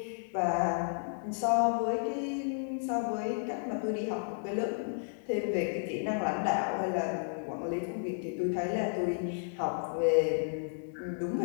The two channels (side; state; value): right; silent; 56 dB below the other